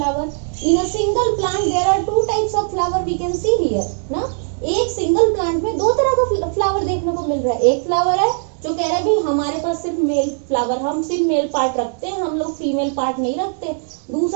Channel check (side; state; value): left; silent; 57 dB below the other